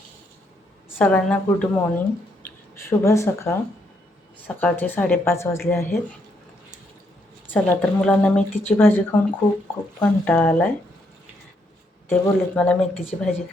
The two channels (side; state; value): both; normal; correlation 0.75